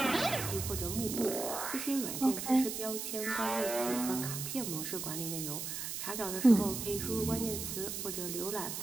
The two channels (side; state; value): right; noise; hiss, 5 dB below the sound